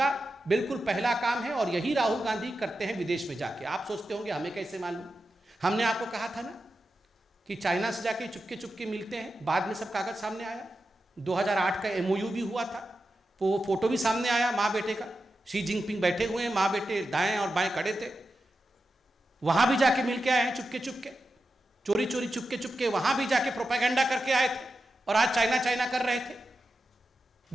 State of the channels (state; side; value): normal; both; correlation 0.90